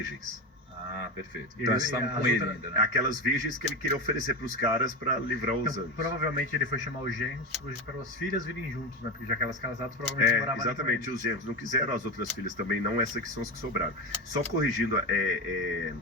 Ah, perfeito. Então eles estavam com ele ainda, né? Aquelas virgens que ele queria oferecer para os caras para livrar os anjos. Provavelmente ele foi chamar os genros para as filhas virem juntos, né? Porque já que elas casadas provavelmente moravam. Exatamente, os genros não quiseram, as outras filhas também não, essas que são as que sobraram. Só corrigindo,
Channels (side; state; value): both; normal; correlation 0.19